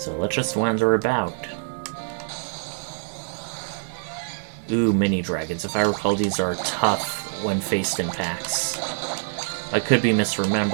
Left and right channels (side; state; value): left; silent; 62 dB below the other